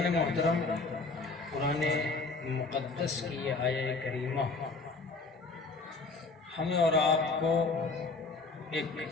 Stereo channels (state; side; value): quieter; right; 3.8 dB